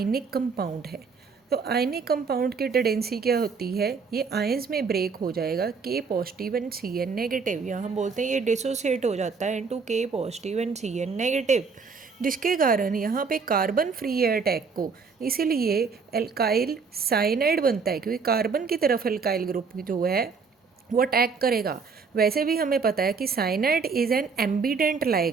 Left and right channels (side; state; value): left; quieter; 5.1 dB